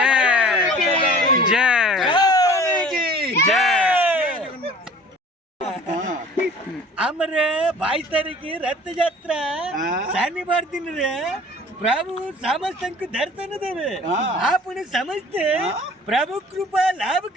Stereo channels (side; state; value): both; normal; correlation 0.47